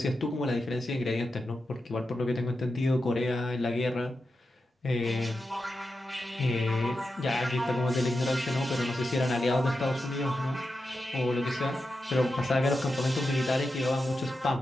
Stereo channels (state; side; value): normal; both; correlation 0.90